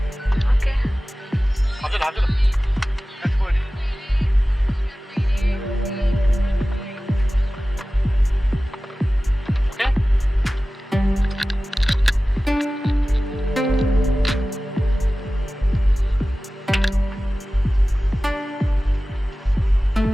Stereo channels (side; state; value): both; normal; correlation 0.96